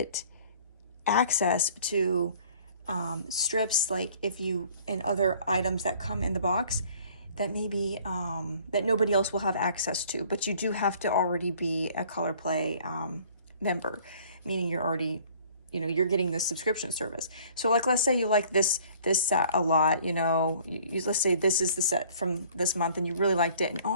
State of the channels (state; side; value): inverted; both; correlation -0.54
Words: access to strips, like if you, and other items that come in the box that maybe that nobody else will have access to, but you do have to already be a Color Play member, meaning you're already, you know, you're getting this subscription service. So like, let's say you like this set a lot, you know, let's say this is the set from this month and you really liked it, and